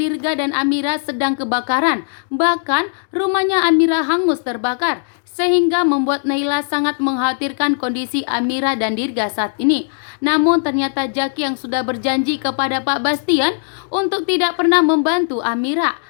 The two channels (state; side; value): silent; right; digital silence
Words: dan Amira sedang kebakaran. Bahkan rumahnya Amira hangus terbakar, sehingga membuat Naila sangat mengkhawatirkan kondisi Amira dan Dirga saat ini. Namun ternyata Jaki yang sudah berjanji kepada Pak Bastian untuk tidak pernah membantu Amira,